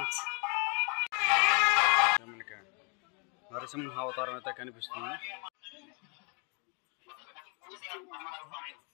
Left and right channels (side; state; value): right; quieter; 35.3 dB